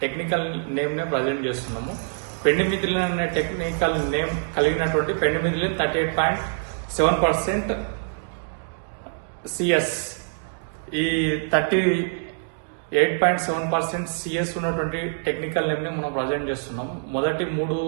టెక్నికల్ నేమ్నే ప్రజెంట్ చేస్తున్నాము. పెండిమిథిలిన్ అనే టెక్నికల్ నేమ్ కలిగినటువంటి పెండిమిథిలిన్ 38.7% సిఎస్, ఈ 38.7% సిఎస్ ఉన్నటువంటి టెక్నికల్ నేమ్ని మనం ప్రజెంట్ చేస్తున్నాం. మొదటి 3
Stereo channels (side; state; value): left; silent; digital silence